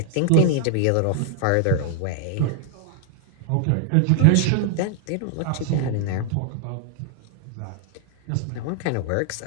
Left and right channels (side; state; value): both; different; correlation 0.00